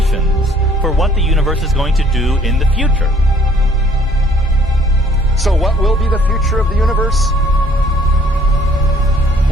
for what the universe is going to do in the future. So what will be the future of the universe?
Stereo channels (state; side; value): normal; both; correlation 0.60